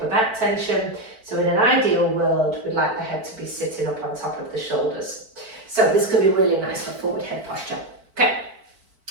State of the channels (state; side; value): late; left; 4.5 ms